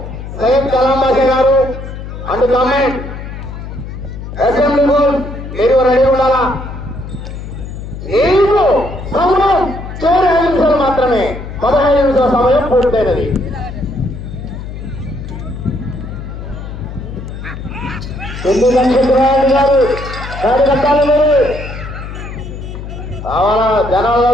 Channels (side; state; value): left; noise; hum, 9 dB below the sound